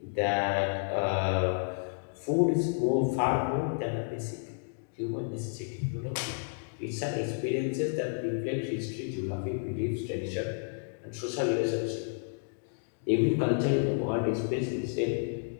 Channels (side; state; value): right; silent; digital silence